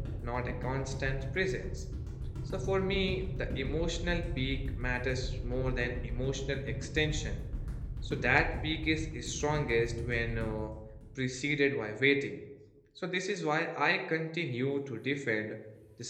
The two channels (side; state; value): both; identical; correlation 1.00